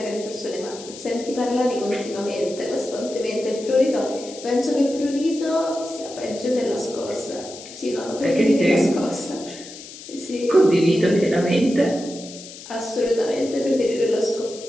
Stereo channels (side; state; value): left; noise; hiss, 15 dB below the sound